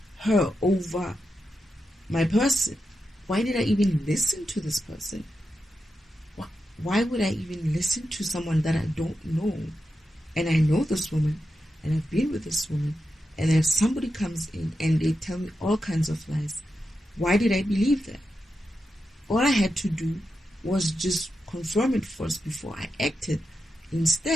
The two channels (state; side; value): normal; both; correlation 0.88